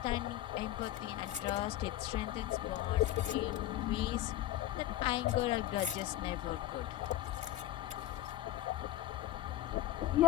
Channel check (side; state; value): right; quieter; 14.0 dB